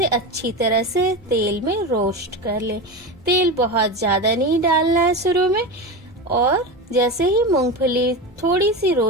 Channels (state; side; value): normal; both; correlation 0.22